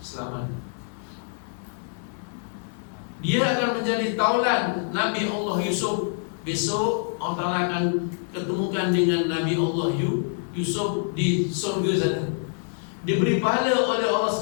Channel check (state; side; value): silent; right; 61 dB below the other